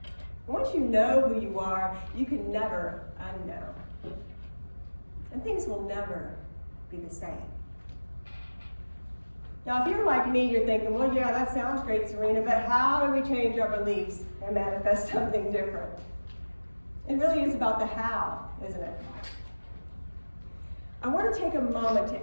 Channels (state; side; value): inverted; both; correlation -1.00